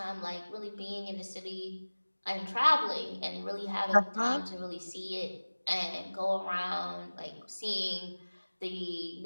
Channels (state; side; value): inverted; both; correlation -1.00